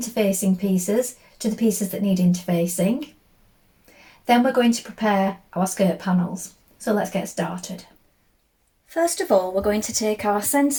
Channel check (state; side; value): identical; both; correlation 1.00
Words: pieces to the pieces that need interfacing. Then we're going to prepare our skirt panels. So let's get started. First of all, we're going to take our